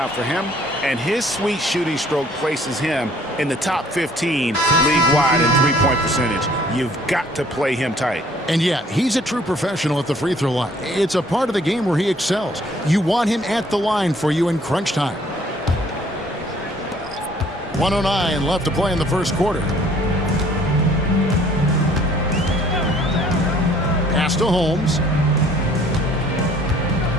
for him, and his sweet shooting stroke places him in the top 15 league-wide in three-point percentage. You've got to play him tight. And yeah, he's a true professional at the free throw line. It's a part of the game where he excels. You want him at the line for you in crunch time. 1:09 left to play in the first quarter. Pass to Holmes.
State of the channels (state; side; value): normal; both; correlation 0.58